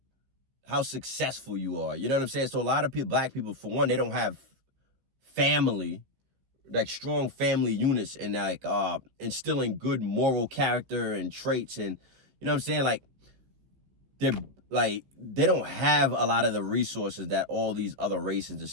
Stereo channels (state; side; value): late; left; 15 ms